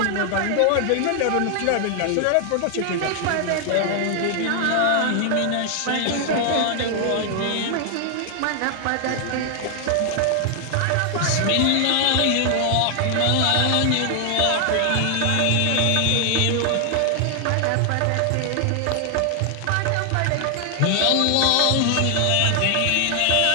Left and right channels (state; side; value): different; both; correlation 0.00